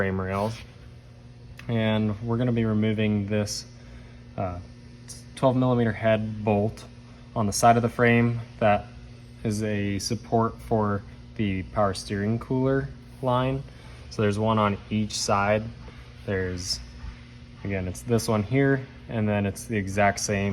rails, and we're going to be removing this 12mm head bolt on the side of the frame that is a support for the power steering cooler line. So there's one on each side. There's, again, it's this one here, and then it's the exact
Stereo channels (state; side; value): identical; both; correlation 1.00